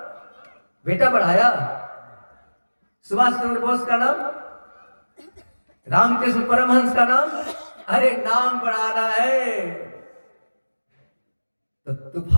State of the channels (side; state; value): both; inverted; correlation -1.00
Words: बेटा बढ़ाया। सुभाष चंद्र बोस का नाम, रामकृष्ण परमहंस का नाम, अरे नाम बढ़ाना है तो